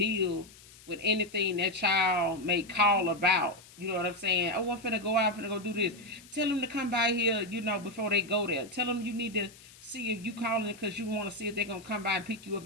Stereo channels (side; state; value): left; noise; hiss, 22 dB below the sound